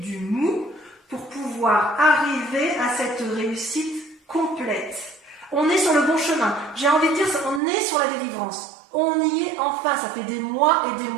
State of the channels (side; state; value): left; drops out; at 7.6 s